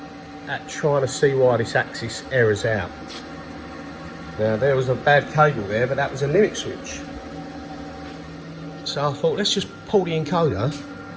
at trying to see why this axis errors out. Now there was a bad cable there, but that was a limit switch. So I thought, let's just pull the encoder.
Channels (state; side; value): identical; both; correlation 1.00